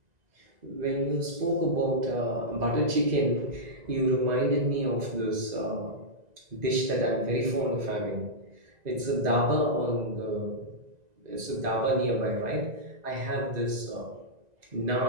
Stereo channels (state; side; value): late; left; 2.0 ms